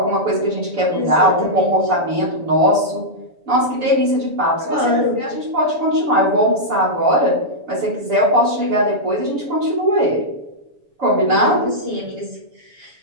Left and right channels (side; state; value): left; late; 7.0 ms